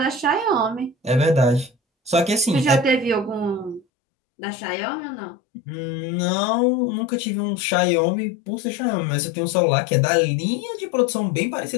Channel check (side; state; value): right; drops out; at 3.9 s